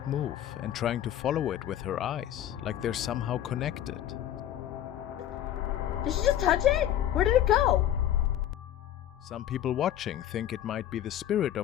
move and trying to follow it with her eyes, like they're somehow connected. Did she just touch it? Where did it go? Some people watching think it might be the spirit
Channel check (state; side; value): quieter; right; 11.7 dB